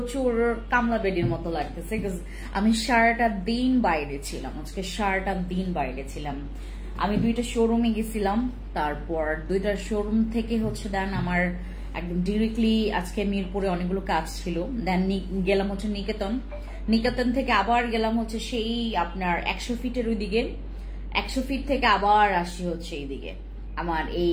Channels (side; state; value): both; identical; correlation 1.00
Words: কামলা বেডির মতো লাগতেছে, বিকজ আমি সারাটা দিন বাইরে ছিলাম। আজকে সারাটা দিন বাইরে ছিলাম। আমি 2টা শোরুমে গেছিলাম, তারপর 2টা শোরুম থেকে দেন আমার একদম ডিরেক্টলি আজকে মিরপুরে অনেকগুলো কাজ ছিল। দেন গেলাম নিকেতন থেকে আবার গেলাম সেই আপনার 100 ফিটের ওইদিকে, 100 ফিট থেকে আবার আসি এইদিকে। আমার